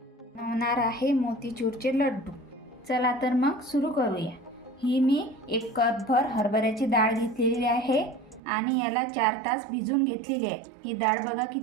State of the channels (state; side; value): drops out; left; at 8.4 s